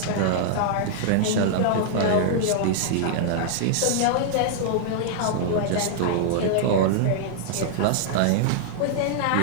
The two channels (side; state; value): both; different; correlation -0.01